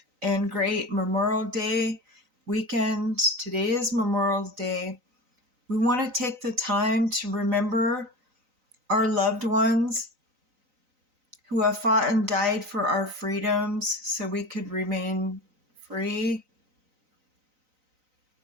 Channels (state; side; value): late; left; 3.9 ms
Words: and great Memorial Day weekend. Today is Memorial Day. We want to take the time to remember our loved ones who have fought and died for our freedoms so we could remain free.